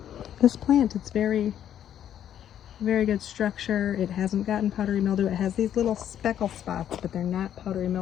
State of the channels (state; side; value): quieter; right; 10.3 dB